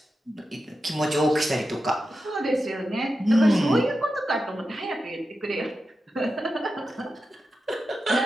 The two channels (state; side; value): normal; both; correlation 0.90